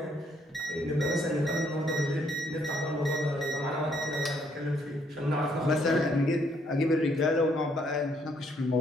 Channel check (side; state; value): both; normal; correlation 0.70